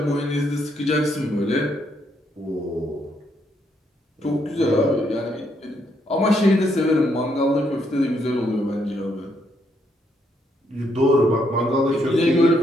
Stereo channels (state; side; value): normal; both; correlation 0.74